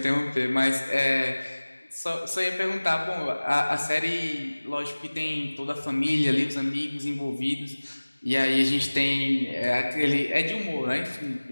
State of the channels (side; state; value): both; inverted; correlation -1.00